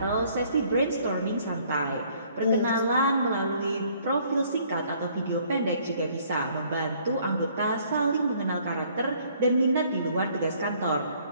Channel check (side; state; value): both; inverted; correlation -0.62